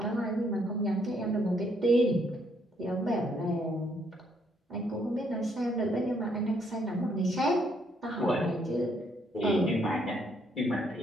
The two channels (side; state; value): both; normal; correlation 0.70